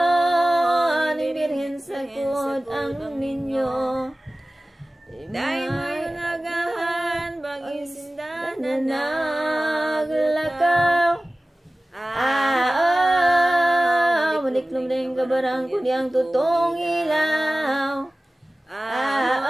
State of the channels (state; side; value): normal; both; correlation 0.97